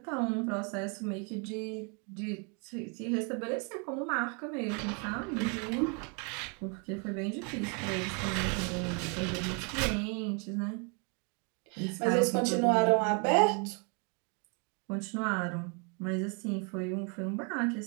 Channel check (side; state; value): left; quieter; 36.1 dB